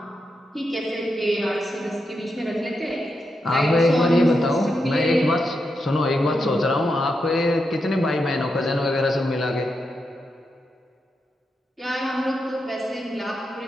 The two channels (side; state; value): both; normal; correlation 0.85